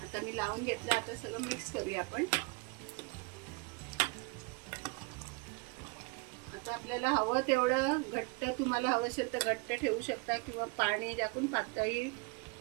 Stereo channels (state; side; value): quieter; left; 27.6 dB